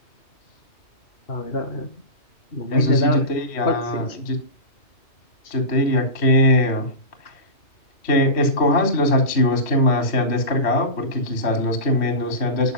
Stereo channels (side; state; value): right; late; 3.1 ms